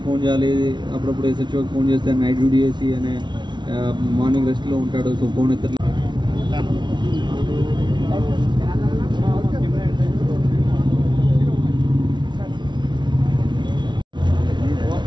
phone చేయాలి, అప్పుడప్పుడు ఎస్హెచ్ఓకి ఫోన్ చేస్తే నైట్ డ్యూటీ చేసి అనే మార్నింగ్ రెస్ట్లో ఉంటాడు, సో ఫోన్ ఎత్తలేదు.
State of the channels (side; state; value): left; late; 0.22 ms